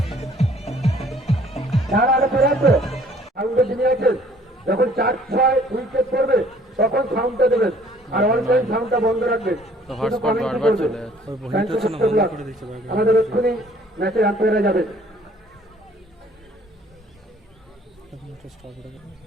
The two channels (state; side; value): normal; both; correlation 0.57